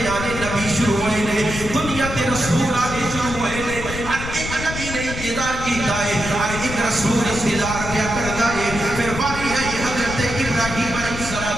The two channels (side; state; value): left; noise; rumble, 8 dB below the sound